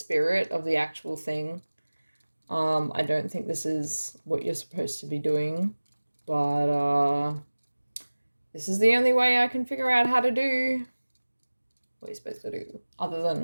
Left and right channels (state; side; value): inverted; both; correlation -1.00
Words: of the actual thing. I don't think this is what you're supposed to be doing, but this is the only way I can figure out how to do what you're supposed to do, other